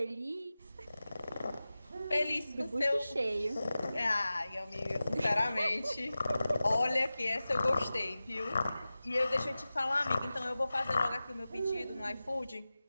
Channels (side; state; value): both; inverted; correlation -0.96